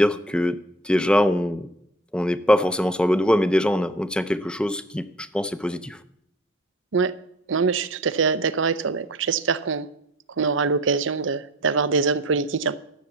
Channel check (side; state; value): both; normal; correlation 0.44